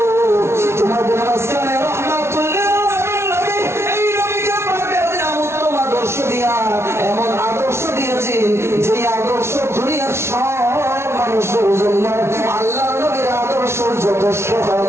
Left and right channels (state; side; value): late; left; 0.13 ms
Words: তোমাদের মাঝখানে রাহমাতুল লিল আলামিন নবী, এই নবীকে পাঠিয়ে দিলাম উত্তম আদর্শ দিয়া। এমন আদর্শ দিয়েছেন যে আদর্শ দুনিয়ার সব মানুষের জন্য আল্লাহ নবীর আদর্শ যথেষ্ট হয়ে